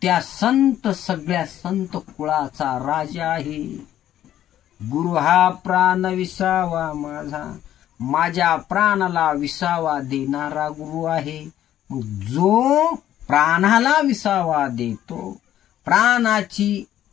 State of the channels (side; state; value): right; quieter; 11.9 dB